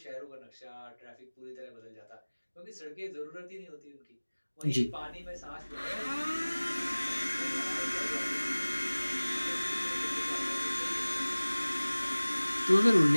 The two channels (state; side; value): inverted; both; correlation -1.00